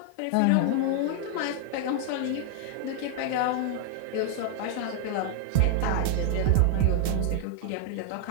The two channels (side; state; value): both; different; correlation 0.00